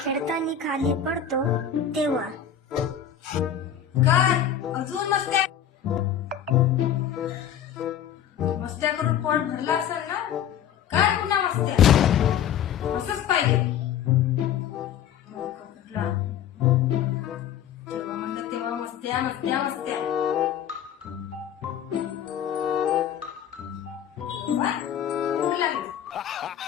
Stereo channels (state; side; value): quieter; right; 9.1 dB